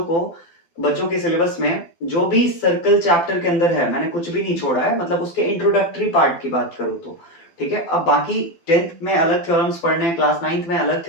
के सिलेबस में जो भी सर्कल चैप्टर के अंदर है, मैंने कुछ भी नहीं छोड़ा है, मतलब उसके इंट्रोडक्टरी पार्ट की बात करूं तो, ठीक है। अब बाकी 10th में अलग थ्योरम्स पढ़ने हैं, क्लास 9th में अलग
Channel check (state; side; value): late; right; 12 ms